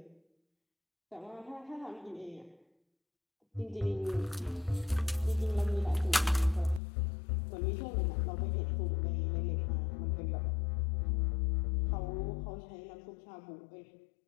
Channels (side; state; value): right; drops out; at 6.8 s